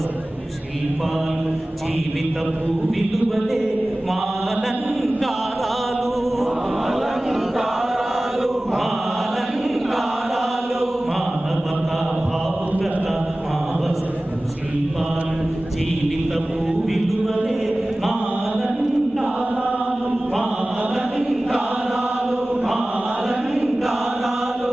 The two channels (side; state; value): both; normal; correlation 0.97